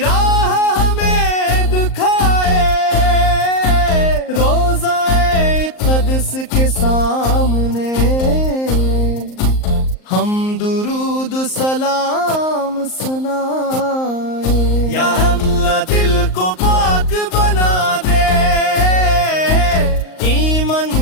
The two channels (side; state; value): right; late; 38 ms